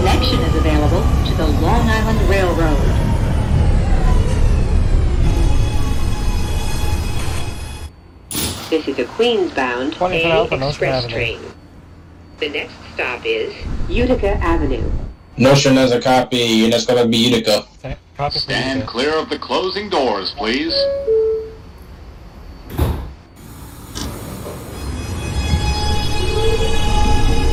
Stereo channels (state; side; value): identical; both; correlation 1.00